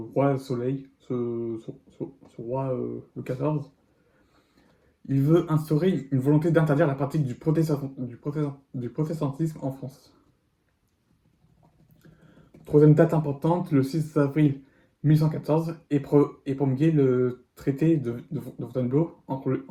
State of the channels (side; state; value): both; identical; correlation 1.00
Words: Soleil, ce roi Louis XIV, il veut instaurer une volonté d'interdire la pratique du protestantisme en France. Troisième date importante, le 6 avril 1814 et promulgué le traité de Fontainebleau